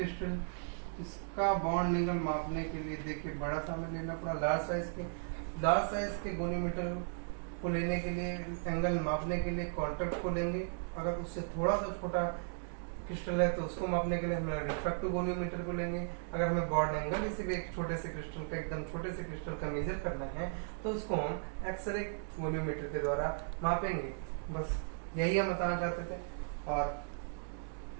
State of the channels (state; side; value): silent; left; digital silence